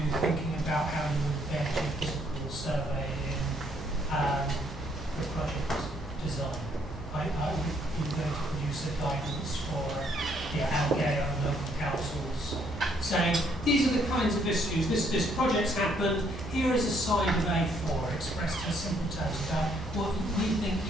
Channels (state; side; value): normal; both; correlation 0.68